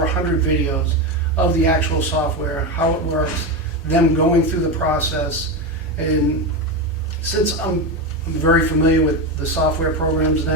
100 videos of the actual software, how it works, them going through the process. And since I'm very familiar with the software programs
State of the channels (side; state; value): both; normal; correlation 0.14